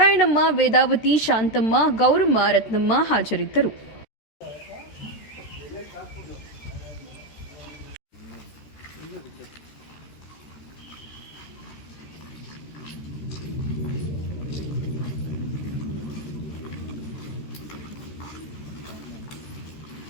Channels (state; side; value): late; right; 13 ms